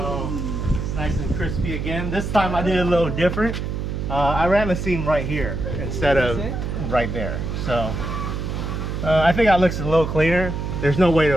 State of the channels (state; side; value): noise; right; hum, 3 dB below the sound